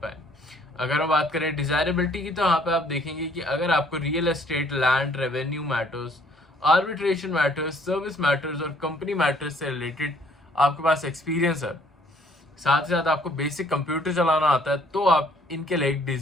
अगर हम बात करें डिजायरेबिलिटी की, तो यहाँ पे आप देखेंगे कि अगर आपको real estate, land, revenue matters, arbitration matters, service matters और कंपनी मैटर्स से रिलेटेड आपके पास एक्सपीरियंस है, साथ ही साथ आपको बेसिक कंप्यूटर चलाना आता है, तो आप इनके लिए एक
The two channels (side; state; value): both; normal; correlation 0.62